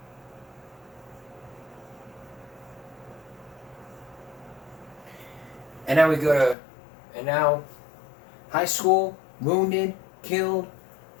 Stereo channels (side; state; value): right; drops out; at 6.6 s